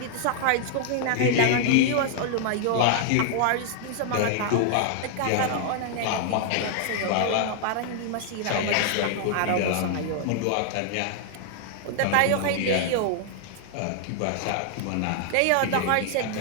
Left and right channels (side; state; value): both; different; correlation -0.01